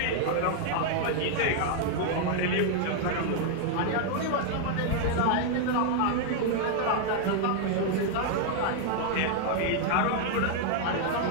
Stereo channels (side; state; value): both; different; correlation 0.00